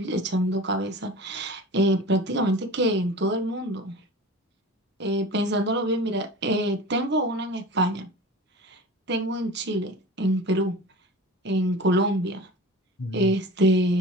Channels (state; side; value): normal; both; correlation 0.36